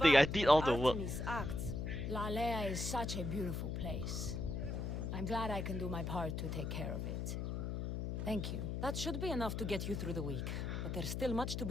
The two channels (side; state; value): left; noise; hum, 3 dB below the sound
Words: I provide, did all the but work. Artemis acts. Lalea is such a beautiful place. I'm glad I can do my part to take care of it. Thank you. That should be enough to get you through the week, but there's still much to